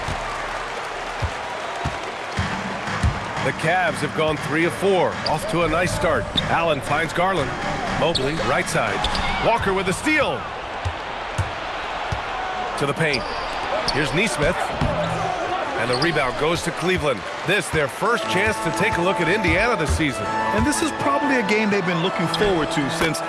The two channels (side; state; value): both; identical; correlation 1.00